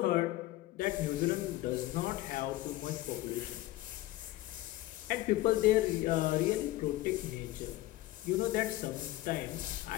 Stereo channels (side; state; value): right; quieter; 16.6 dB